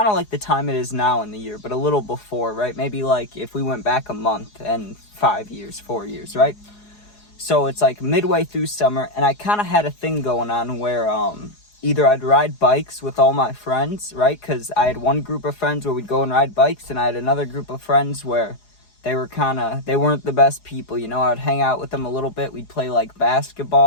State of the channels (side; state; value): right; late; 4.8 ms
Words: of like the time it is now in the year, but a little before, right? Maybe like if we went back a month and 5 years, 4 years, right? So it's like midway through summer, and I kind of had a thing going on where either I'd ride bikes with all my friends, right? Because I had one group of friends where we'd go and ride bikes, and I had another group of friends where they weren't the best people, you know? I'd hang out with them a little bit. We'd play like